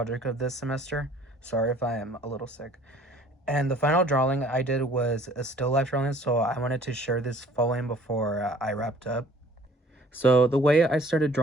of this semester. Sorry if I am a little sick. And the final drawing I did was a still life drawing, so I wanted to share this following before I wrapped up. So the way I started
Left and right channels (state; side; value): normal; both; correlation 0.54